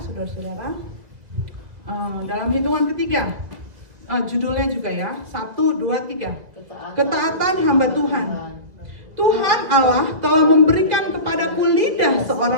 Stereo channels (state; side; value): late; left; 2.0 ms